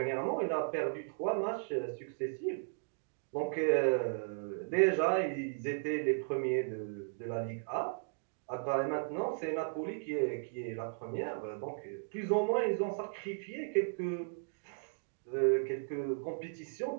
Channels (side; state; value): left; silent; digital silence